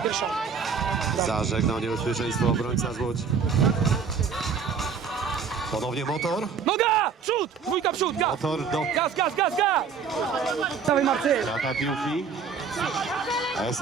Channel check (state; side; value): quieter; left; 6.0 dB